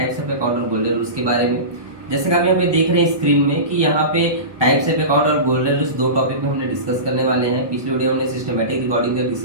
ऑफ अकाउंट और गोल्डन रूल्स के बारे में। जैसे कि आप यहाँ पे देख रहे हैं स्क्रीन में कि यहाँ पे टाइप्स ऑफ अकाउंट और गोल्डन रूल्स दो टॉपिक में हमने डिस्कस करने वाले हैं। पिछले वीडियो में हमने सिस्टमैटिक रिकॉर्डिंग का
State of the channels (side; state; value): left; late; 1.2 ms